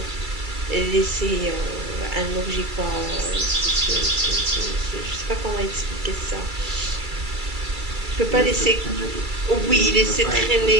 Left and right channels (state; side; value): late; left; 2.3 ms